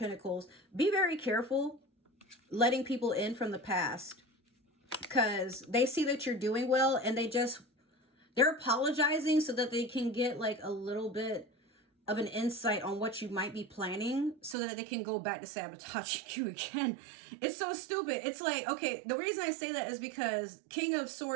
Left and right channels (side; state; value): left; drops out; at 14.6 s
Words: be very careful letting people in from the past, because they see that you're doing well and they're apologizing so that they can get like a little bit of an insight on what you might be planning, so that they can go back to sabotaging you again. It's so stupid. It's like, okay, the reason I say that is because King of